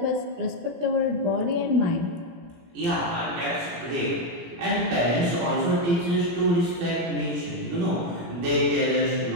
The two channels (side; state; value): left; late; 17 ms